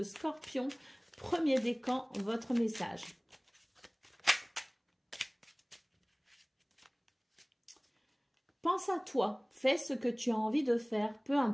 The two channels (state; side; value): identical; both; correlation 1.00